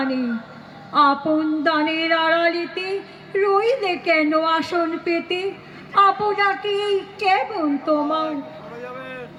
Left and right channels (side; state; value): both; identical; correlation 1.00